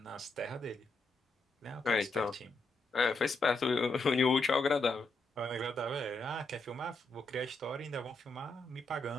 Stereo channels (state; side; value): quieter; right; 3.0 dB